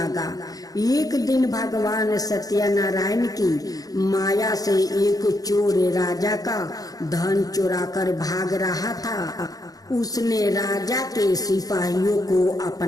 एक दिन भगवान सत्यनारायण की माया से एक चोर राजा का धन चुराकर भाग रहा था। उसने राजा के सिपाहियों को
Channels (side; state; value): right; late; 0.18 ms